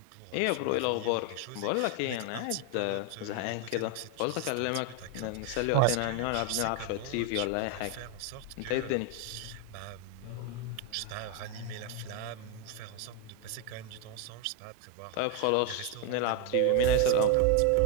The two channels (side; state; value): both; different; correlation 0.01